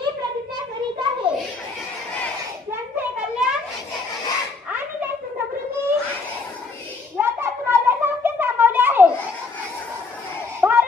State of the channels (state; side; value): quieter; right; 4.0 dB